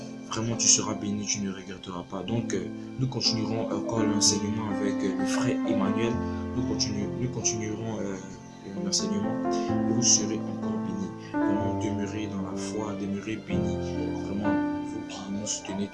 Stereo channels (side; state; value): both; identical; correlation 1.00